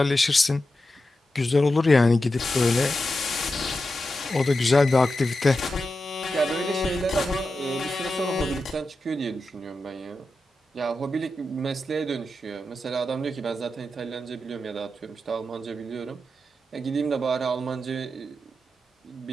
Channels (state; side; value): normal; both; correlation 0.90